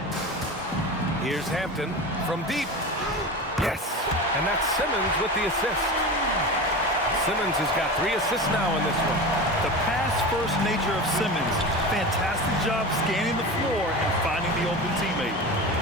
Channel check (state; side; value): normal; both; correlation 0.28